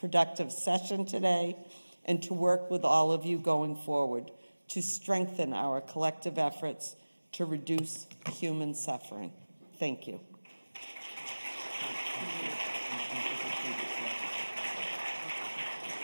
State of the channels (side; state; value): both; inverted; correlation -1.00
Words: session today and to work with all of you going forward to strengthen our collective efforts to reduce human suffering. Thank you.